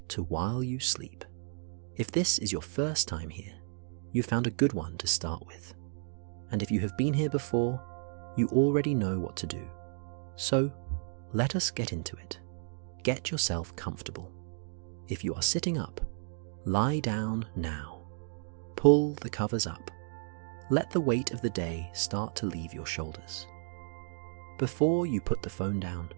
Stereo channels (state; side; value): silent; left; 56 dB below the other